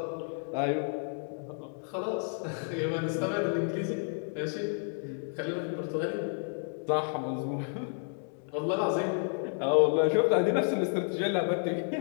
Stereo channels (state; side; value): silent; right; 57 dB below the other